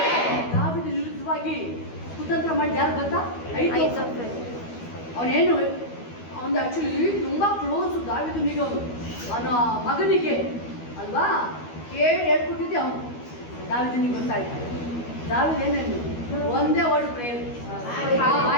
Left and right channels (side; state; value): right; late; 12 ms